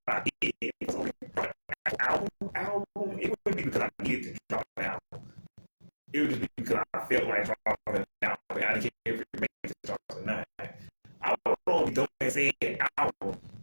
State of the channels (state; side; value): inverted; both; correlation -1.00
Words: I did it was only album, it wouldn't be because I needed to drop an album. It would just be because I felt like dropping an album. I didn't care if it made it drops or not. I would only don't say an album